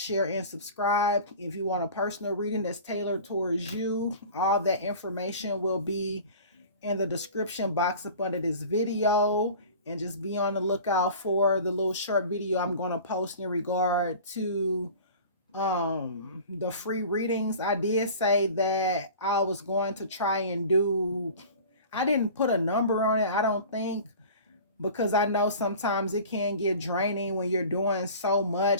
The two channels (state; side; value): inverted; both; correlation -0.40